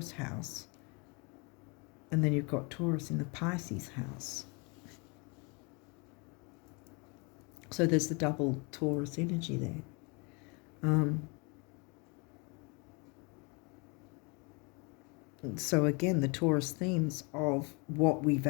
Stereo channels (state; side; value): quieter; right; 31.0 dB